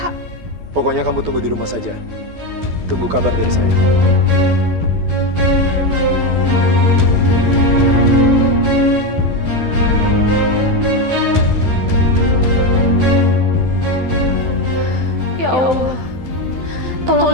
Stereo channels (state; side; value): late; left; 12 ms